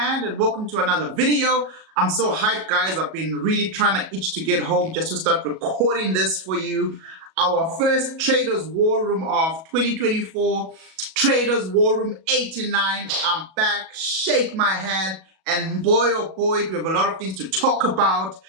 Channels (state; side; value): late; left; 37 ms